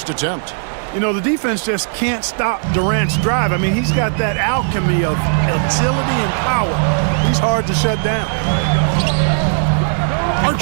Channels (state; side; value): silent; left; 62 dB below the other